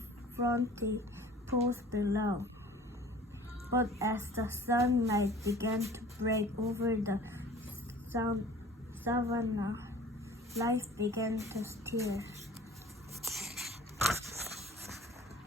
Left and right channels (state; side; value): normal; both; correlation 0.46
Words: fronty pools below. But as the sunlight began to break over the savannah, life began to stir.